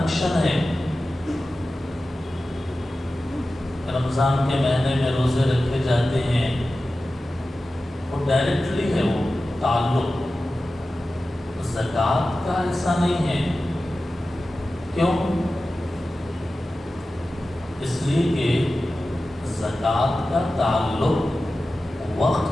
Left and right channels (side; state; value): both; normal; correlation 0.94